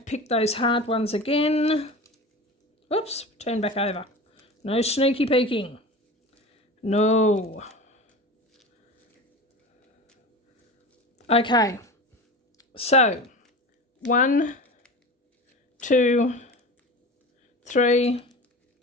pick those hard ones again. Oops, turn back over. No sneaky peeking. No. Okay, so 1, 2, 3,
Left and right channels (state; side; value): normal; both; correlation 0.32